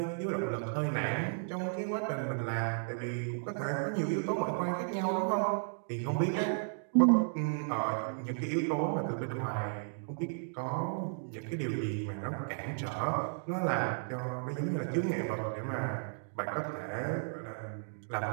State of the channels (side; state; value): left; silent; digital silence